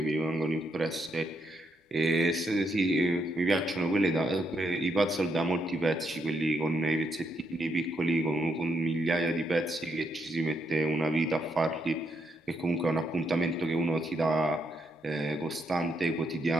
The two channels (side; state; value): both; normal; correlation 0.78